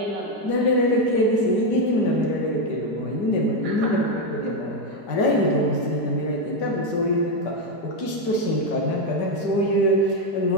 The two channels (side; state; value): right; late; 5.2 ms